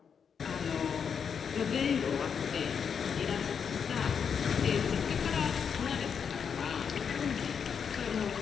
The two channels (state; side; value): quieter; right; 6.9 dB